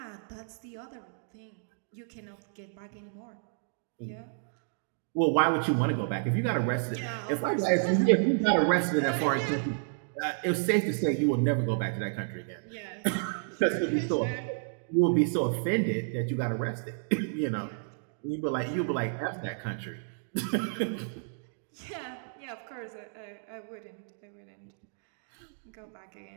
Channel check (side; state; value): left; silent; digital silence